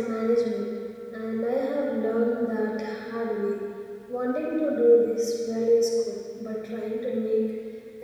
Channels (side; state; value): both; identical; correlation 1.00